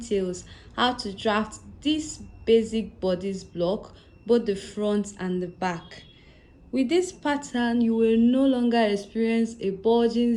how to draft this basic bodice block, both the front and the back. With this pattern, you will no longer experience a bulging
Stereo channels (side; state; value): both; identical; correlation 1.00